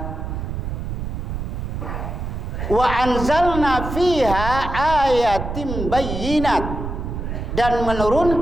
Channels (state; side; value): noise; right; rumble, 5 dB below the sound